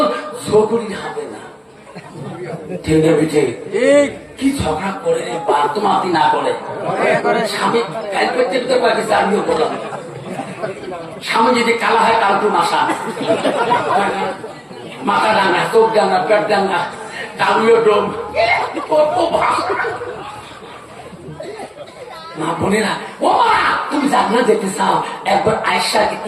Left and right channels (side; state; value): both; identical; correlation 1.00